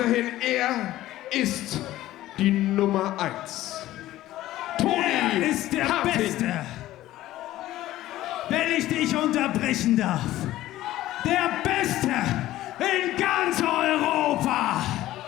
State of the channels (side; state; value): right; quieter; 15.0 dB